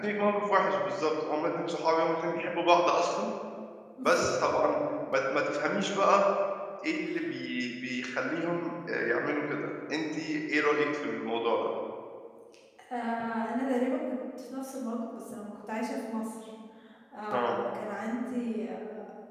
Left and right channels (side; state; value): both; identical; correlation 1.00